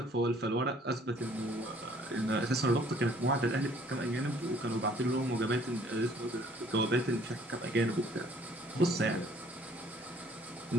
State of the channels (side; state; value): both; normal; correlation 0.58